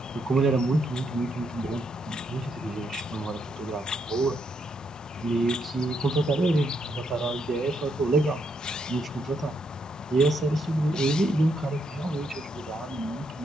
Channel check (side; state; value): both; normal; correlation 0.77